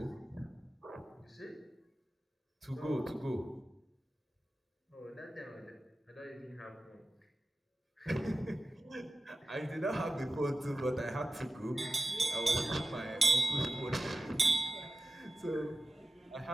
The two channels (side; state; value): both; normal; correlation 0.95